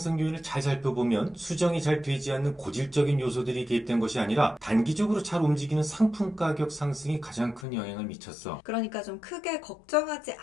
요인을 잘 살펴보면 수정이 잘 되지 않는 고질적인 요소들이 개입된 것이 아니라 단기적으로 잘 움직이는 상품 가격 상승이 가장 큰 영향을 미쳤어. 그러니까 좀 크게 걱정하지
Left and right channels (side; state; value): right; drops out; at 7.7 s